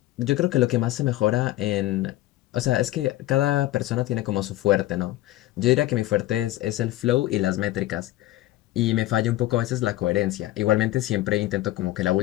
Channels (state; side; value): quieter; right; 15.9 dB